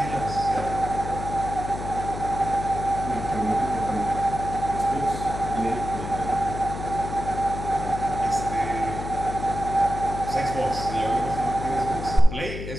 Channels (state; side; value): noise; left; hum, 7 dB below the sound